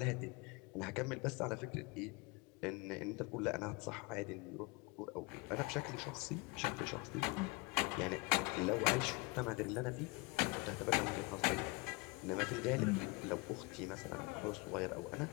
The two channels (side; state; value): right; quieter; 25.5 dB